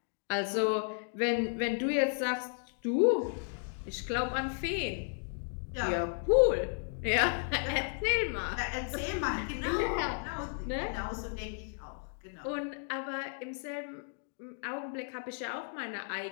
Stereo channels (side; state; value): right; silent; 55 dB below the other